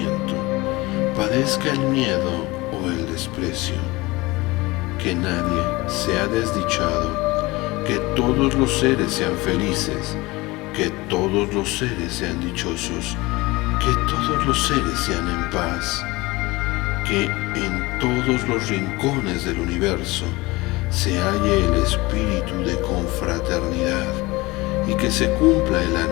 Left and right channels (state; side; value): quieter; right; 21.8 dB